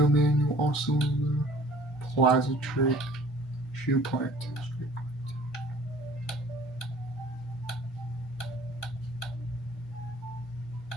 manual also. Plaza trick. Shoe plant.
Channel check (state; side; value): normal; both; correlation 0.51